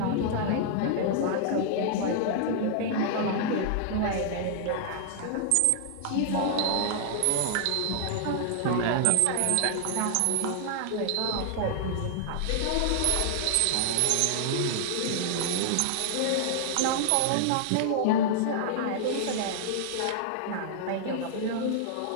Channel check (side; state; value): both; different; correlation -0.01